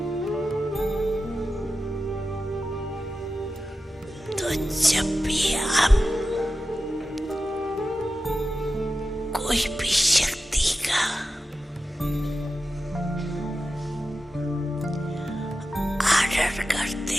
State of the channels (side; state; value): both; normal; correlation 0.92